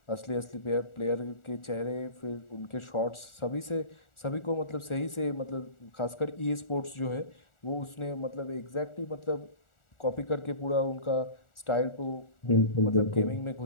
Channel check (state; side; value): late; right; 1.4 ms